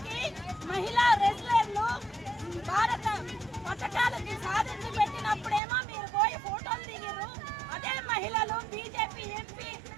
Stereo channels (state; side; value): drops out; left; at 5.6 s